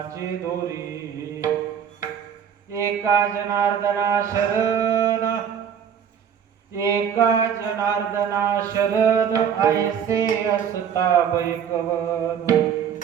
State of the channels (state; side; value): quieter; left; 8.0 dB